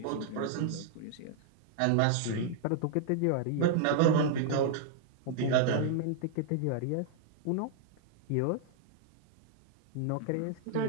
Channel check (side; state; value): both; different; correlation -0.01